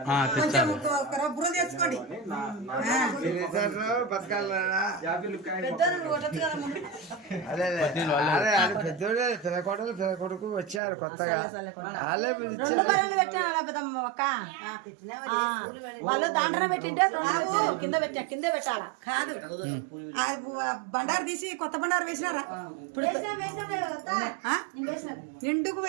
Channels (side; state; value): left; drops out; at 10.8 s